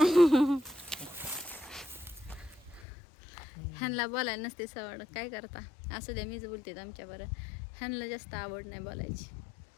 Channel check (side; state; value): right; drops out; at 2.9 s